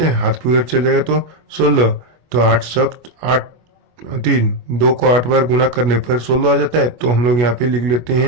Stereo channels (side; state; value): left; late; 24 ms